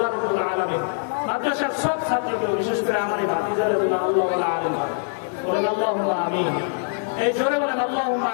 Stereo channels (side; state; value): right; silent; digital silence